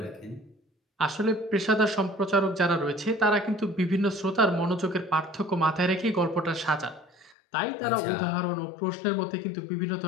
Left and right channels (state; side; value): drops out; right; at 7.4 s